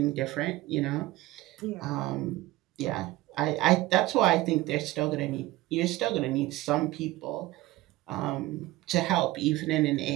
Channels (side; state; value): left; quieter; 17.4 dB